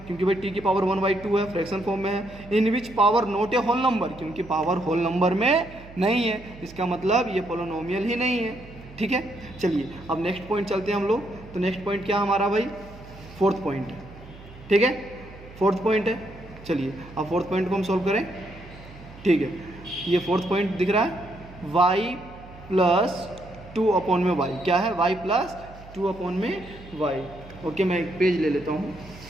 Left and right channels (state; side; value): noise; right; hum, 18 dB below the sound